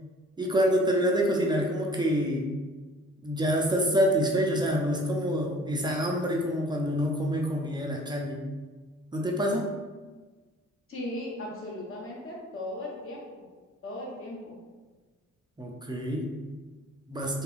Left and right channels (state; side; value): normal; both; correlation 0.52